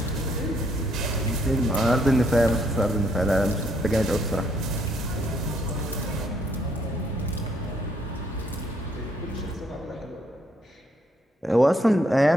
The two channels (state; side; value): normal; both; correlation 0.70